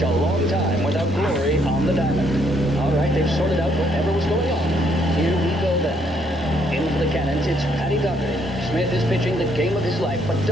a long time without glory on the diamond. All right, they've sorted out whatever was going on. Here we go then. In for the Cannons, it's Patty Doherty. Smith is pitching the game of his life, but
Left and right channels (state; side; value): normal; both; correlation 0.70